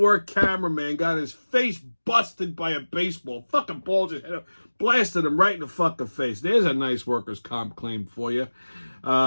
cameraman got his face busted by a baseball. Fucking ball just hit him, blasted him right in the fucking face. There's a nice workers' comp claim for you.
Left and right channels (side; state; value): both; inverted; correlation -1.00